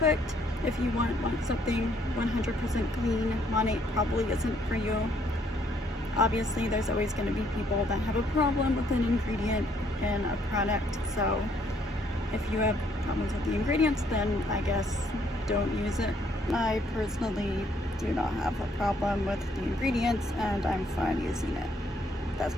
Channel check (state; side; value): normal; both; correlation 0.68